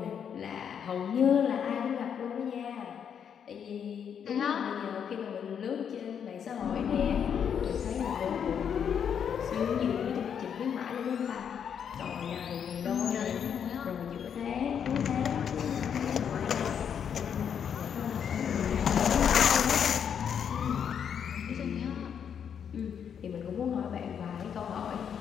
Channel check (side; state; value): right; quieter; 7.9 dB